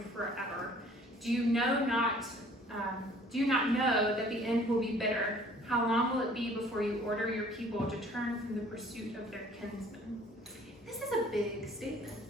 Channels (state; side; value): normal; both; correlation 0.54